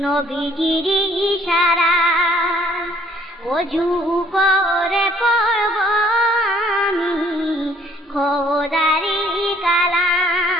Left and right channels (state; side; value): normal; both; correlation 0.61